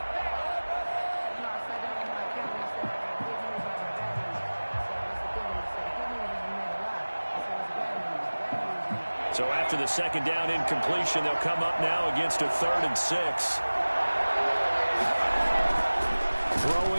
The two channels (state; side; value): inverted; both; correlation -1.00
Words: So after the second down incompletion, they'll come up now against a 3rd and 6.